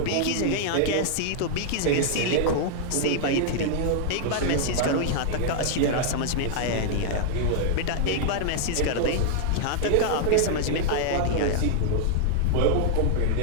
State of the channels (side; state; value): both; different; correlation -0.01